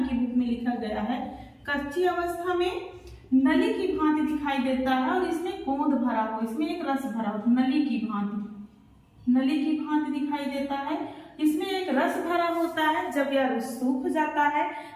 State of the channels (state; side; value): identical; both; correlation 1.00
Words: की बुक में लिखा गया है। कच्ची अवस्था में नली की भांति दिखाई देता है और इसमें गोंद भरा हो, इसमें एक रस भरा हो, नली की भांति, नली की भांति दिखाई देता है। इसमें एक रस भरा होता है। जब यह रस सूख जाता है